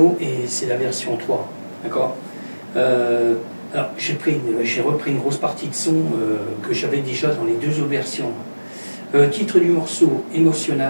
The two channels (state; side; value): inverted; both; correlation -1.00